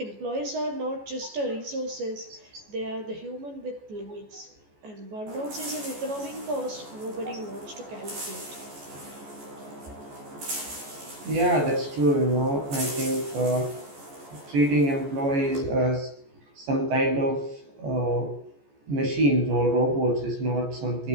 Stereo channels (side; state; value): left; late; 14 ms